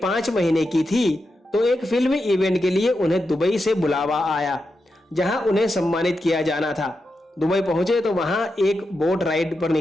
महीने की थी तो एक फिल्मी इवेंट के लिए उन्हें दुबई से बुलावा आया, जहां उन्हें सम्मानित किया जाना था। दुबई पहुंचे तो वहां एक बोट राइड पर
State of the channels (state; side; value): normal; both; correlation 0.88